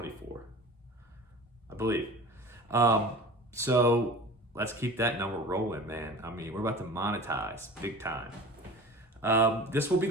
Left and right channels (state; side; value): normal; both; correlation 0.38